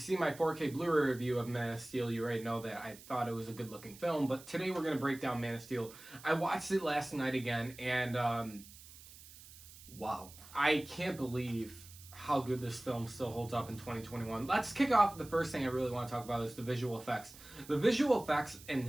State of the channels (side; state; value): right; noise; hiss, 19 dB below the sound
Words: my 4K Blu-ray review of Man of Steel, you already know that I thought it was a good-looking film. But today we're going to break down Man of Steel. I watched it last night again, and wow. I can't believe how good this film still holds up in 2021. Let's kick off. The first thing I really want to talk about is the visual effects. The visual effects and